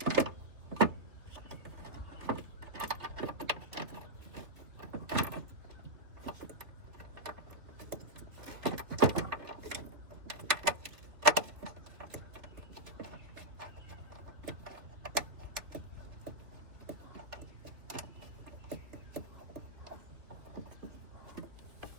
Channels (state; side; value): late; left; 3.0 ms